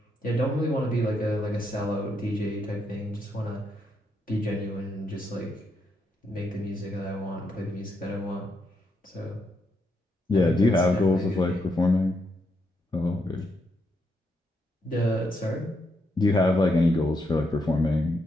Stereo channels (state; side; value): normal; both; correlation 0.79